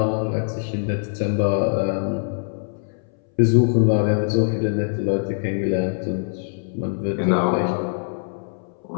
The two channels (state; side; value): silent; right; 61 dB below the other